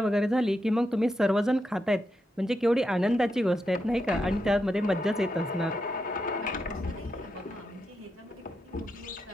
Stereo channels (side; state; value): both; normal; correlation 0.85